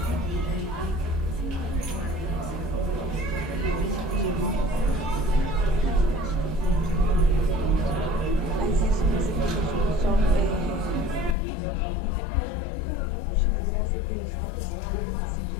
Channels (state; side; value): drops out; right; at 11.4 s